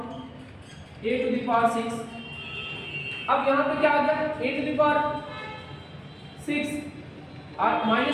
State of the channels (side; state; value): both; identical; correlation 1.00